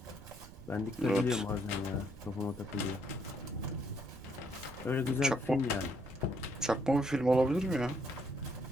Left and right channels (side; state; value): right; noise; rumble, 16 dB below the sound